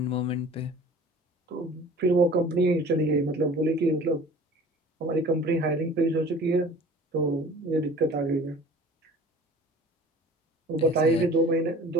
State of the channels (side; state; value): both; normal; correlation 0.45